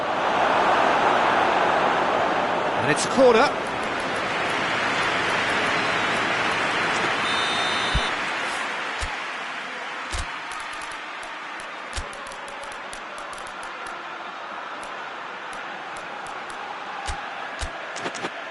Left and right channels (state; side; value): identical; both; correlation 1.00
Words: And it's a corner.